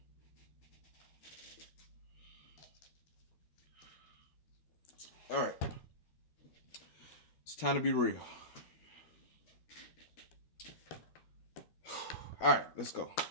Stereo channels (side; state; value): right; late; 12 ms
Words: All right. It's time to be real. All right, let's go.